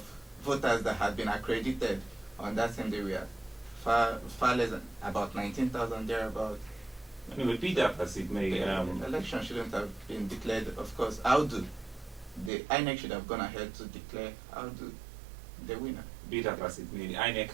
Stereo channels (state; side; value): drops out; left; at 12.5 s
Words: voters that had been accredited on that same day were far less than about 19,000 thereabout. Anyway, be that as it may, the election shouldn't have been declared. Of course, the INEC should have gone ahead to declare the winner. Be that as it may, the INEC